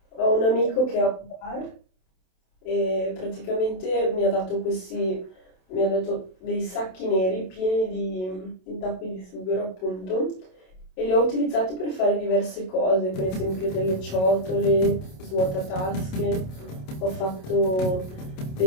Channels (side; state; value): right; late; 27 ms